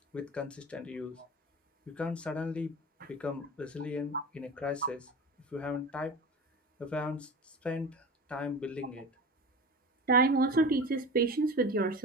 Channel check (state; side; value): normal; both; correlation 0.32